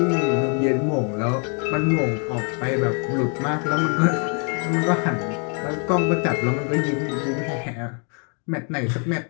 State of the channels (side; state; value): right; quieter; 39.4 dB